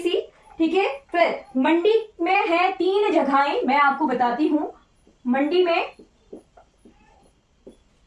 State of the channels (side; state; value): both; identical; correlation 1.00